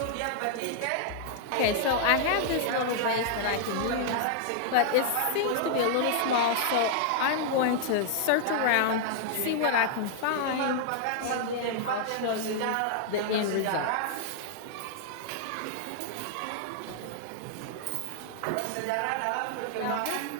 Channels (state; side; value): different; both; correlation -0.01